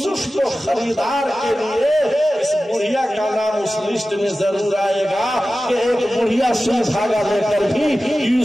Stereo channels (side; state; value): both; normal; correlation 0.95